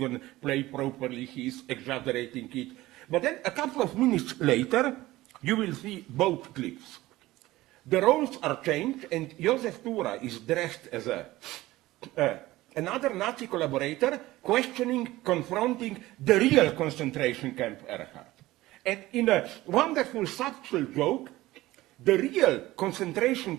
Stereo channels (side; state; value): left; quieter; 17.5 dB